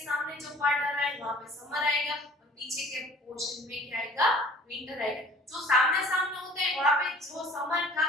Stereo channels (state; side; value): normal; both; correlation 0.49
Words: जो पार्ट आ रहा है वहां पे समर आएगा और पीछे के पोर्शन में क्या आएगा, विंटर आएगा। जो सामने सामने होता है वहां पे जो समर था